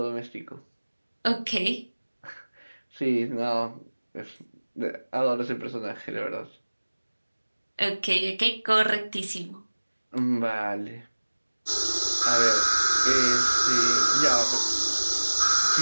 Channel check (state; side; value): inverted; both; correlation -1.00